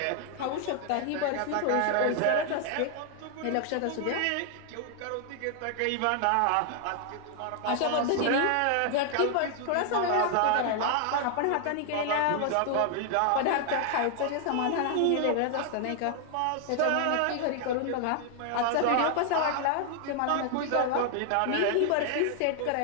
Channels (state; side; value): different; both; correlation 0.00